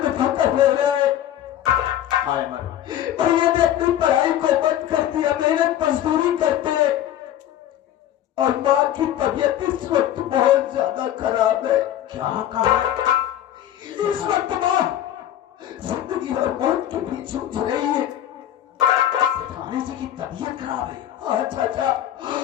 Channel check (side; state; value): right; quieter; 11.7 dB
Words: में ठोकर ले रहे। भैया ने अपनी पढ़ाई को बंद कर दिया, मेहनत मजदूरी करते, और माँ की तबीयत इस वक्त बहुत ज्यादा खराब है। क्या कहा? इस वक्त माँ जिंदगी और मौत के बीच जूझ रही है। थाने जी की तबीयत खराब है? हाँ चाचा,